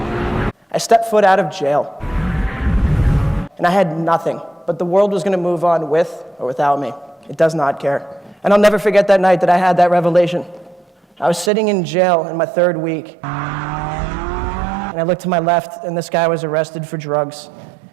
I stepped foot out of jail, and I had nothing, but the world was going to move on with or without me. It does not care. And I'll never forget that night that I had that revelation. I was sitting in jail in my 3rd week, and I looked to my left, and this guy was arrested for drugs,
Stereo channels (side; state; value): left; drops out; at 11.5 s